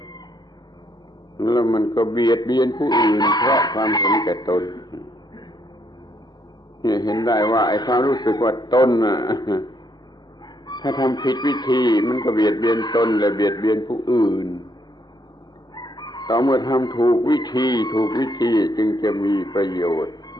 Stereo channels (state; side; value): normal; both; correlation 0.73